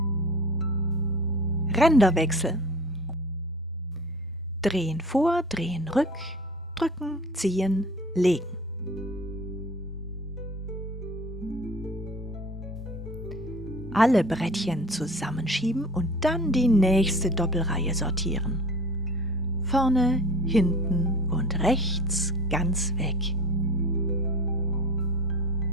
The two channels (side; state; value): both; normal; correlation 0.41